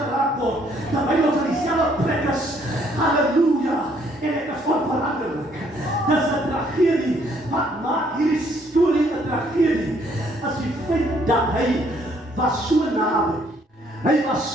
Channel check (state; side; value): normal; both; correlation 0.66